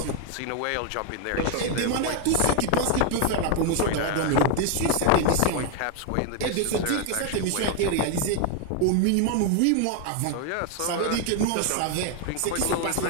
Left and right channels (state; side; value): different; both; correlation 0.01